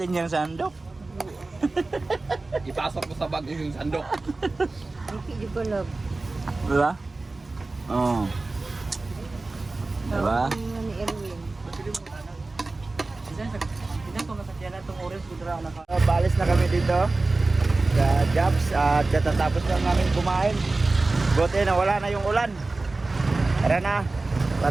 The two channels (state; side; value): quieter; left; 3.3 dB